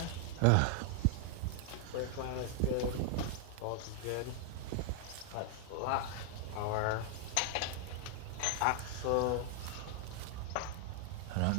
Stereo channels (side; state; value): both; different; correlation 0.00